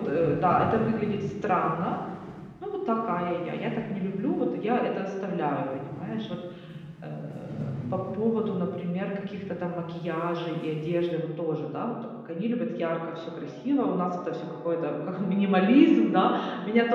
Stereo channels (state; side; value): identical; both; correlation 1.00